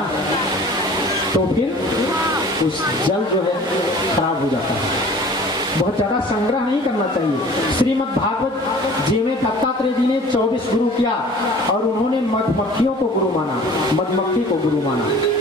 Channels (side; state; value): both; normal; correlation 0.46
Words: तो फिर उस जल जो है खराब हो जाता है। बहुत ज्यादा संग्रह नहीं करना चाहिए। श्रीमद् भागवत जी में दत्तात्रेय जी ने 24 गुरु किया और उन्होंने मधुमक्खियों को गुरु माना, मधुमक्खी को गुरु माना।